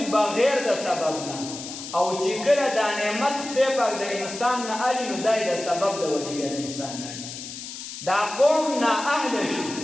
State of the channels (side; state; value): left; noise; hiss, 10 dB below the sound